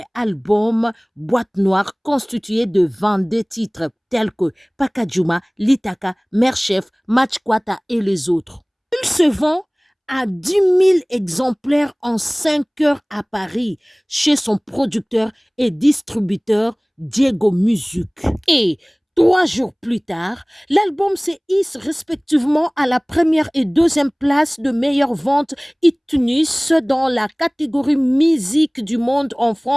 album Boîte Noire constitué de 22 titres tels que Pakajuma, Litaka, Merchef, Matchkwata et les autres. Il se vend à 10 000 exemplaires en 5 heures à Paris chez son producteur et distributeur Diego Music. Et 3 jours plus tard, l'album se hisse respectivement à la première et deuxième place de meilleure vente iTunes dans la catégorie musique du monde en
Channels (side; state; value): both; identical; correlation 1.00